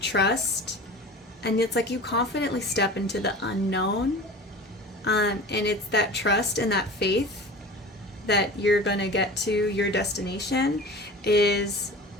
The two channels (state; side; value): normal; both; correlation 0.38